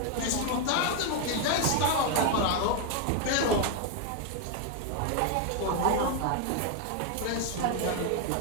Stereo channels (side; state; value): both; different; correlation 0.01